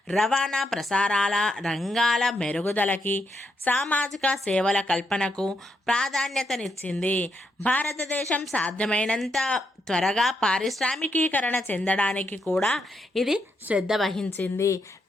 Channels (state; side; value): normal; both; correlation 0.80